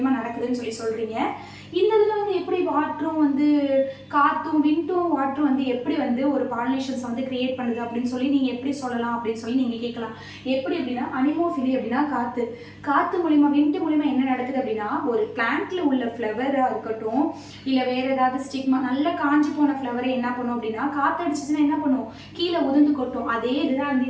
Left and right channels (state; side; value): identical; both; correlation 1.00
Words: நடக்குதுன்னு சொல்கிறீங்க. இந்த இதில் வந்து எப்படி வாட்டரும் வந்து காற்றும் விண்டும் வாட்டரும் வந்து எப்படி வந்து ஒரு பாலினேஷன்ஸ் வந்து கிரியேட் பண்ணுது அப்படின்னு சொல்லி நீங்கள் எப்படி சொல்லலாம் அப்படின்னு சொல்லி நீங்கள் கேட்கலாம். எப்படி அப்படின்னா அனிமோஃபிலி அப்படின்னா காற்று மூலிமா விண்டு மூலிமா என்ன நடக்குது அப்படின்னா ஒரு பிளான்ட்ல உள்ள ஃப்ளவராக இருக்கட்டும், இல்லை வேற ஏதாவது ஸ்டிக்மா நல்ல காஞ்சி போன ஃப்ளவரை என்ன பண்ணும் அப்படின்னா காற்று அடிச்சிச்சுன்னா என்ன பண்ணும், கீழே உதிர்ந்து கொட்டும். அதே இதுதான் வந்து